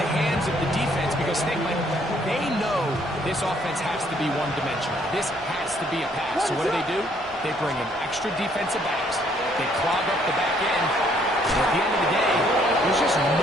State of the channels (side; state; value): both; normal; correlation 0.66